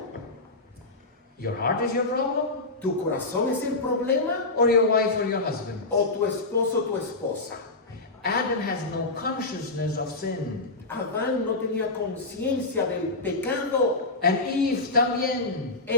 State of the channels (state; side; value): quieter; right; 3.2 dB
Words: Your heart is your problem? tu corazón es el problema Or your wife or your husband? o tu esposo o tu esposa. Adam has no consciousness of sin. Adán no tenía conciencia del pecado. And Eve también.